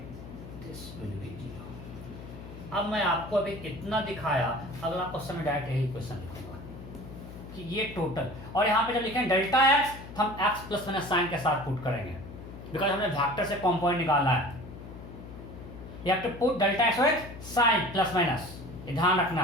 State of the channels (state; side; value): noise; left; hum, 13 dB below the sound